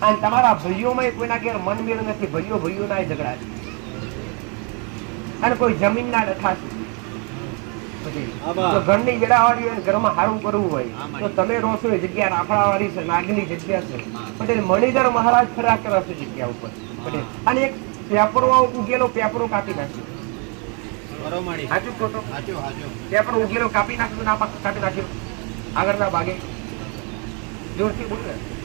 અને તમારા ભાઈઓમાં કોઈના ઘેર મનમેળ નથી, ભાઈઓ ના ઝઘડા છે અને કોઈ જમીન ના ડખા છે. ઘરની વેડાવાળી હોય, ઘરમાં સારું કરવું હોય તો તમે રોશો એ જગ્યા રાફડાવાળી છે, નાગની જગ્યા છે. પટેલ મણિધર મહારાજ ફર્યા કરે છે જગ્યા ઉપર. પટેલ અને એક પેપરો ઉગેલો પેપરો કાપી નાખ્યો. સાચું ખોટું? ત્યાં પણ ઉગેલો કાપી નાખ્યું, ના કાપી નાખ્યું આગળના ભાગે? જોરથી બોલ ને.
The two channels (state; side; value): quieter; left; 35.1 dB